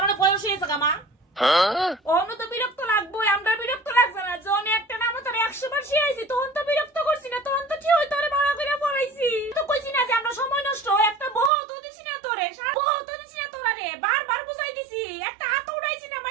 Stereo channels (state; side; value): drops out; left; at 11.5 s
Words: অনেক বয়স হয়েছে গা মা। অন্য তো বিরক্ত লাগবো, আমরা বিরক্ত লাগছে না, জন একটা নাম তোর 100 বার শিখাইছি তখন তো বিরক্ত করছি না, তখন তো ঠিক হই তোরে ভাড়া করে পড়াইছি, তো কইছি না যে আমরা সময় নষ্ট একটা বহু তো দিছি না তোরে, বহু তো দিছি না তোরা রে, বারবার বুঝাই দিছি, একটা হাত উড়াইছি না